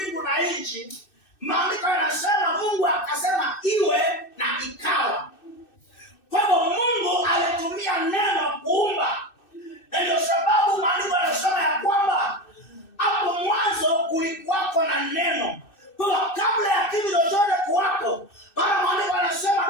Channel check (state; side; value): late; right; 2.6 ms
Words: na nchi, maandiko yanasema Mungu akasema iwe na ikawa. Kwa hivyo Mungu alitumia neno kuumba. Na ndio sababu maandiko yanasema ya kwamba hapo mwanzo kulikuwako na neno. Kwa kabla ya kitu chochote kuwako, maana maandiko yanasema